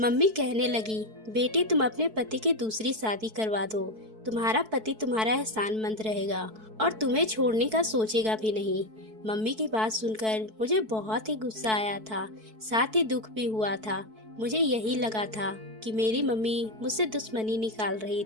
कहने लगी, बेटी तुम अपने पति की दूसरी शादी करवा दो। तुम्हारा पति तुम्हारा एहसानमंद रहेगा और तुम्हें छोड़ने का सोचेगा भी नहीं। मम्मी की बात सुनकर मुझे बहुत ही गुस्सा आया था, साथ ही दुख भी हुआ था। मुझे यही लगा था कि मेरी मम्मी मुझसे दुश्मनी निकाल रही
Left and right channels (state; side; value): late; left; 4.6 ms